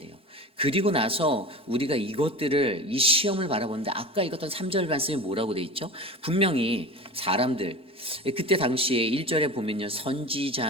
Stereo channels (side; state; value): right; late; 4.4 ms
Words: 그리고 나서 우리가 이것들을, 이 시험을 바라보는데 아까 읽었던 3절 말씀이 뭐라고 돼 있죠? 분명히 사람들, 그때 당시에 1절에 보면요,